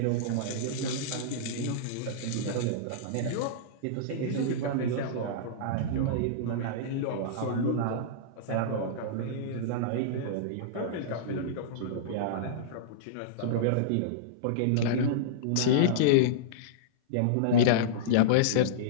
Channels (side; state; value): both; different; correlation -0.03